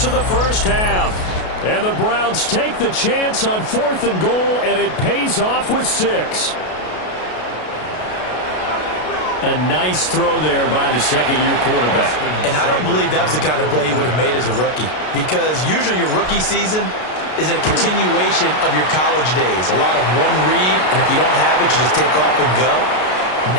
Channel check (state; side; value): late; right; 33 ms